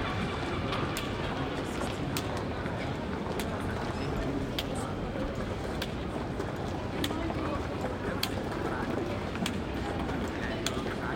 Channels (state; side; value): identical; both; correlation 1.00